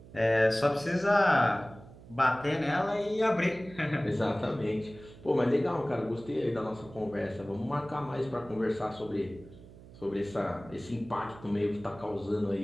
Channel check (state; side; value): noise; right; hum, 19 dB below the sound